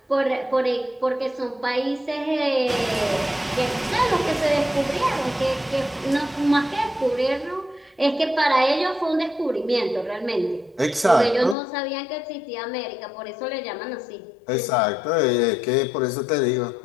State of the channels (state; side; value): drops out; right; at 11.6 s